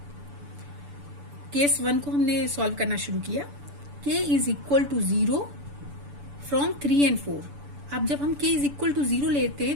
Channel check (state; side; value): late; left; 6.9 ms